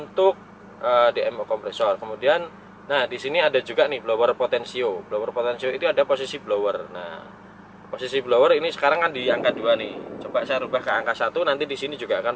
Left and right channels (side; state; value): both; identical; correlation 1.00